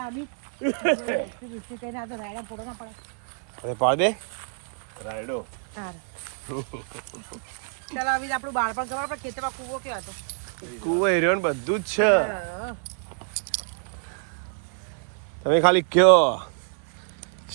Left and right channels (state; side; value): silent; left; 60 dB below the other